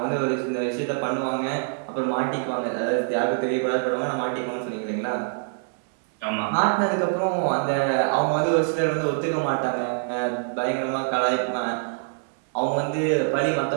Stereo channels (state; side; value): silent; left; digital silence